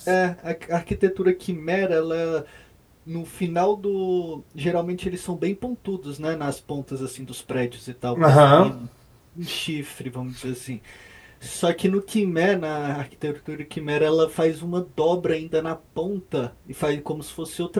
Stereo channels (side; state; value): both; identical; correlation 1.00